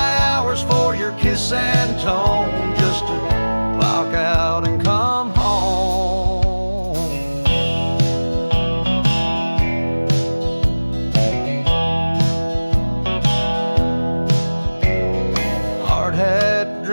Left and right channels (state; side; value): inverted; both; correlation -1.00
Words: hours for your kiss and tone, just to clock out and come home. Hard hat